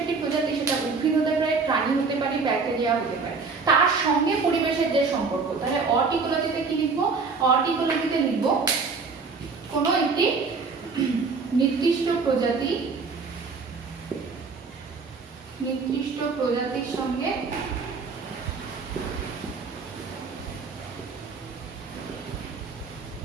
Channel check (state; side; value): quieter; left; 4.6 dB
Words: সেটা উদ্ভিদ হতে পারে, প্রাণী হতে পারে, ব্যাকটেরিয়া হতে পারে, তার সঙ্গে পরিবেশের যে সম্পর্ক। তাহলে অড ইকোলজিতে কি লিখবো? অড ইকোলজিতে লিখবো কোনো একটি নির্দিষ্ট প্রজাতির সঙ্গে